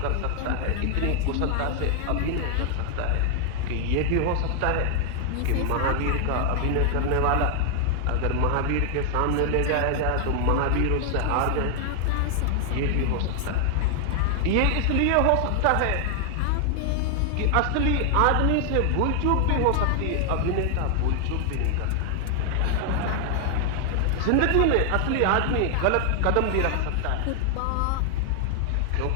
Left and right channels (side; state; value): both; different; correlation 0.00